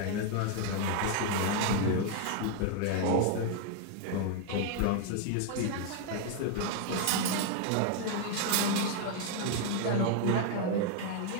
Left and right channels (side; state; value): both; different; correlation 0.00